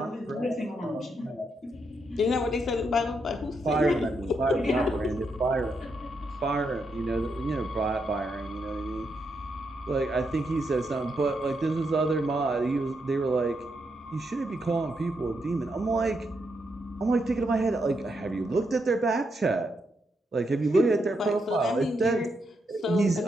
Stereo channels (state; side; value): normal; both; correlation 0.81